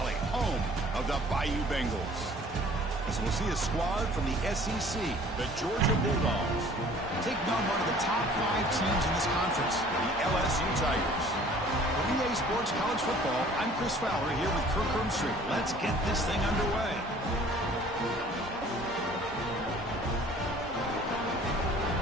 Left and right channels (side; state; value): both; normal; correlation 0.51